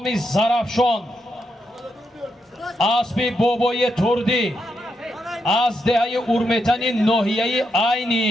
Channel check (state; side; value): normal; both; correlation 0.82